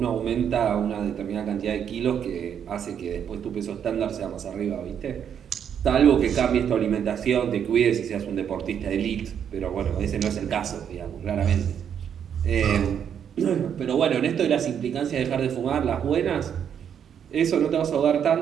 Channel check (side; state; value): left; quieter; 8.4 dB